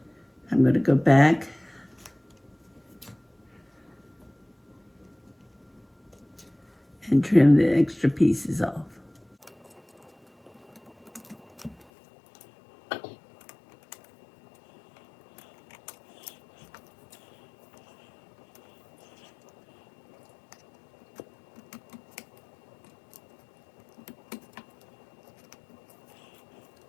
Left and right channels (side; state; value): right; drops out; at 11.9 s